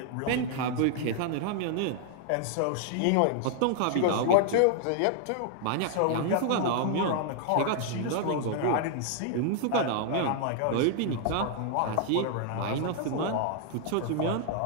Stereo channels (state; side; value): different; both; correlation 0.00